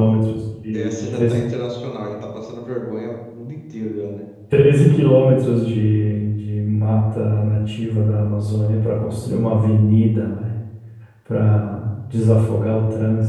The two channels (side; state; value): both; identical; correlation 1.00